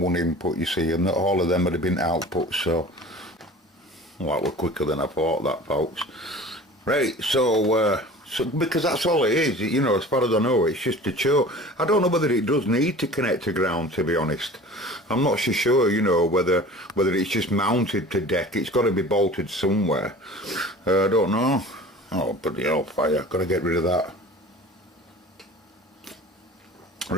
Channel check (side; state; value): both; normal; correlation 0.41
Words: input, you see, and all of them would have been outputs. So, well, that was quicker than I thought, that, folks. Right, so because that's all it is, you know, as far as I know, it's just a choke. I don't know whether it does need to connect to ground, to be honest. I'm not so sure, you know, whether it's just mounted to deck. It's got to be bolted somewhere. I don't know. Oh, bloody hell, fire. Got to get rid of that.